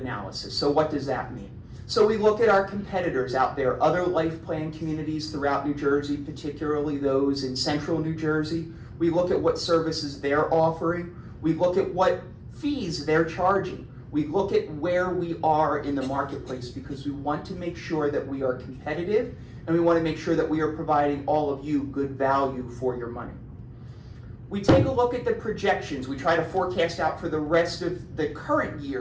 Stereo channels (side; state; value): both; identical; correlation 1.00